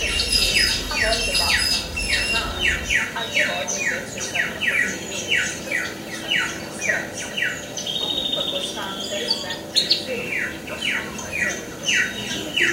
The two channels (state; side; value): identical; both; correlation 1.00